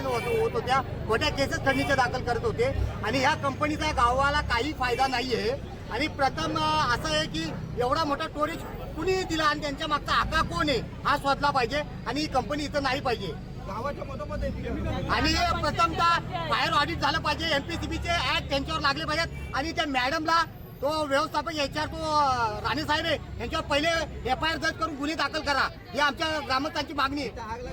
होत होत्या, खोट्या केसेस खंडणीच्या दाखल करत होते आणि ह्या कंपनीचा गावाला काही फायदा नाही आहे. आणि प्रथम असं आहे की एवढा मोठा स्टोरेज कुणी दिला आणि त्यांच्या मागचा आका कोण आहे हा शोधला पाहिजे आणि ही कंपनी इथं नाही पाहिजे. गावाच्या मधोमध आणि प्रथमतः फायर ऑडिट झालं पाहिजे, एमपीसीबीचे ऍक्ट त्यांच्यावर लागले पाहिजेत आणि त्या मॅडमला तो व्यवस्थापक याच्यावर तो राणे साहेब आहे यांच्यावर पहिले FIR दर्ज करून गुन्हे दाखल करा, ही आमच्या ग्रामस्थांची मागणी आहे.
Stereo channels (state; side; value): identical; both; correlation 1.00